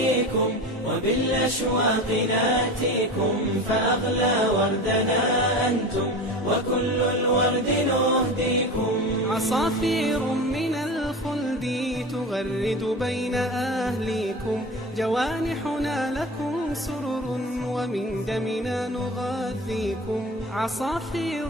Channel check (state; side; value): normal; both; correlation 0.31